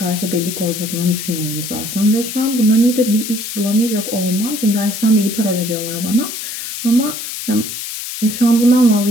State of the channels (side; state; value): left; noise; hiss, 7 dB below the sound